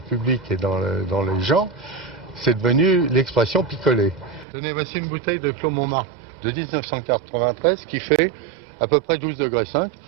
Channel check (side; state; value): left; drops out; at 4.5 s